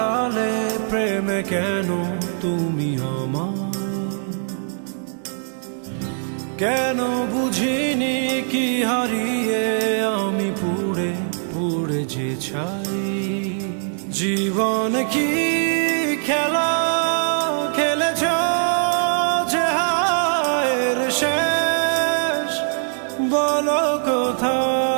প্রেমে কেন তুমি আমার? কেন বুঝিনি কি হারিয়ে আমি পুড়ে পুড়ে যে ছাই। জীবন কি খেলা খেলেছ যে হায়ের শেষ বলো কোথায়?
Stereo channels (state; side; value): silent; left; digital silence